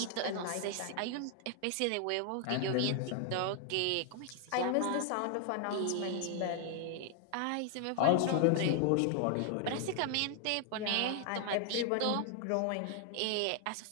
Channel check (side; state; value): both; different; correlation 0.00